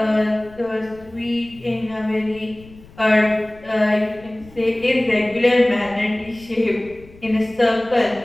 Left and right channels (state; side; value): noise; left; rumble, 23 dB below the sound